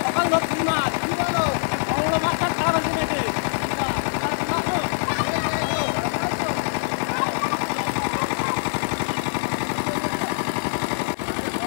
সকাল ধরছি মাছ কি বলো বড় বড় মাছটা খারাপ আছে নাকি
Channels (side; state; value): right; silent; digital silence